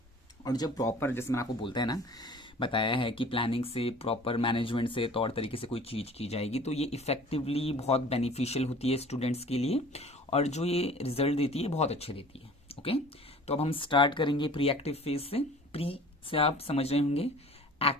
और जब प्रॉपर, जैसे मैंने आपको बोलता है ना, बताया है कि प्लानिंग से, प्रॉपर मैनेजमेंट से, तौर तरीके से कोई चीज़ की जाएगी तो ये इफेक्टिवली बहुत बेनिफिशियल होती है स्टूडेंट्स के लिए, और जो ये रिजल्ट देती है बहुत अच्छे देती है। ओके, तो अब हम स्टार्ट करेंगे प्री एक्टिव फेज से। प्री से आप समझ रहे होंगे,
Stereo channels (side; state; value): both; normal; correlation 0.46